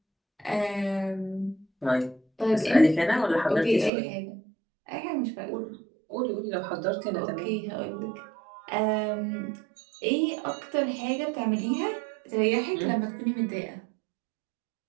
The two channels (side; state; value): left; drops out; at 3.9 s